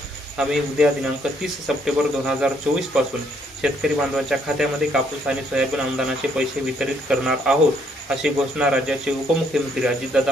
आम्ही उद्या दिनांक 30 सप्टेंबर 2024 पासून शेतकरी बांधवांच्या खात्यामध्ये कापूस आणि सोयाबीन अनुदानाचे पैसे वितरित करणार आहोत अशी घोषणा राज्याचे उपमुख्यमंत्री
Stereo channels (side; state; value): both; normal; correlation 0.69